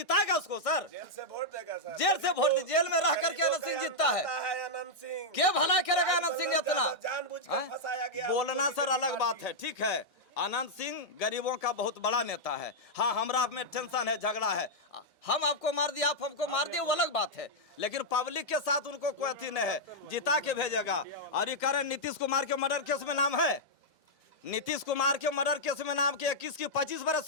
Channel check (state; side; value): normal; both; correlation -0.05